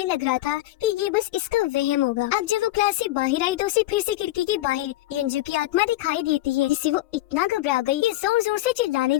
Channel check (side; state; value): right; quieter; 16.2 dB